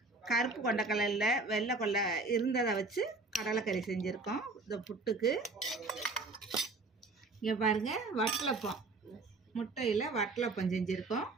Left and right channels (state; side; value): quieter; left; 3.5 dB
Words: கருப்பு கொண்டக்கடலை இல்லை, வெள்ளை கொண்டை இருந்ததை வச்சு கடலைக்கறி செஞ்சுருக்கோம் இந்த புட்டுக்கு. இங்கே பாருங்கள், வட்டலப்பம், முட்டையில் வட்டலப்பம் செஞ்சுருக்கோம்.